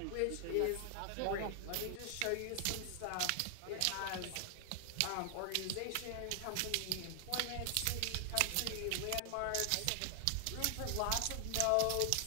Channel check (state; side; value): different; both; correlation 0.00